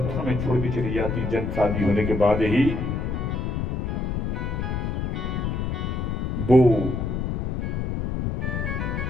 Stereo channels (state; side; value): noise; left; rumble, 1 dB below the sound